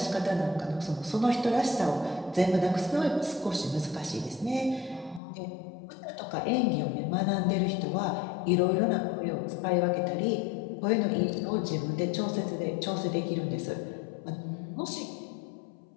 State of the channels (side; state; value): right; drops out; at 5.2 s